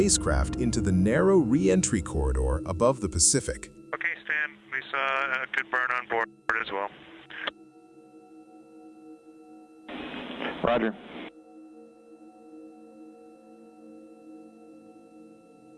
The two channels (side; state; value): both; identical; correlation 1.00